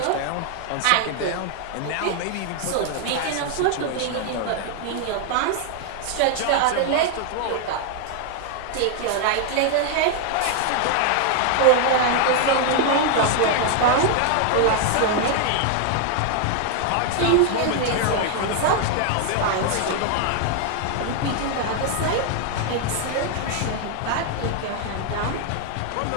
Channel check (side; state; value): both; different; correlation 0.00